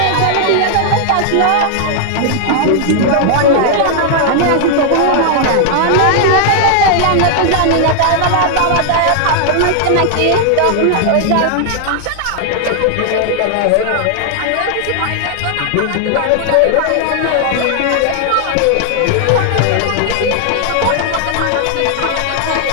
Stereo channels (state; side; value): different; both; correlation 0.00